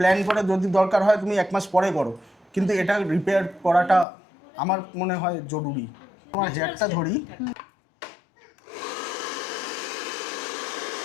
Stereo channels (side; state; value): right; drops out; at 4.0 s